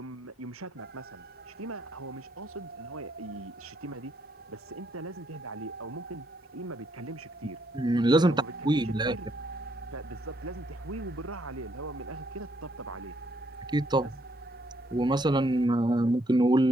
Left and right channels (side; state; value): both; normal; correlation 0.72